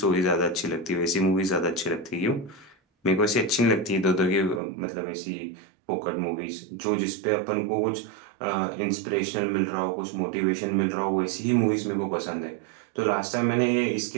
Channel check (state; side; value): drops out; left; at 4.6 s